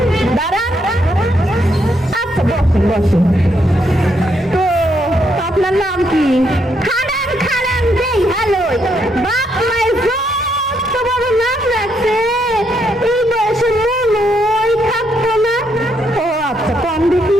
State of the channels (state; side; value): normal; both; correlation 0.76